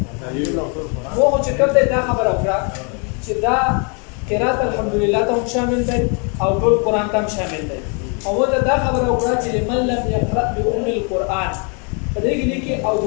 مو چې کوم دی دا خبره وکړه چې دا قرات الحمدلله ته هم شامل دی او ټول قرآن ته هم شامل دی او دا خبره وکړه چې لمن لم يقرأ بأم القرآن په دې کې او د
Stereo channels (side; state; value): right; quieter; 36.3 dB